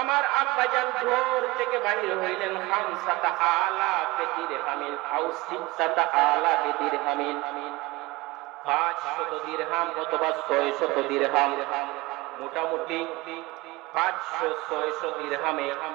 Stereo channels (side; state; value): left; quieter; 21.5 dB